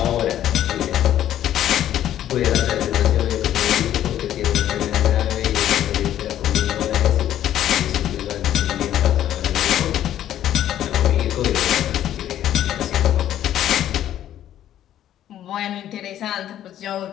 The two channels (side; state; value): right; quieter; 11.6 dB